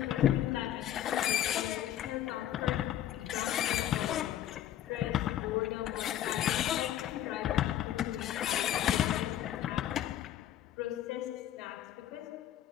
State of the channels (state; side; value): quieter; right; 11.9 dB